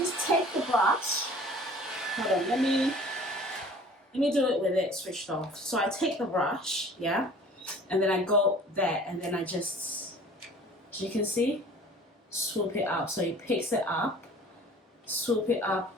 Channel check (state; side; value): normal; both; correlation 0.47